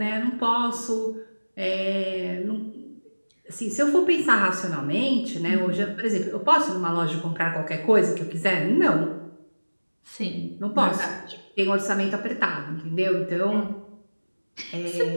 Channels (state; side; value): inverted; both; correlation -1.00